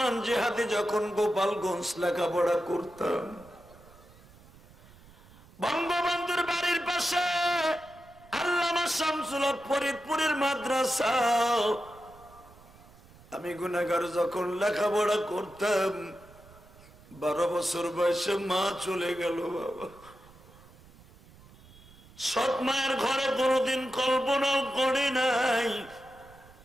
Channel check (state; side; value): noise; right; rumble, 23 dB below the sound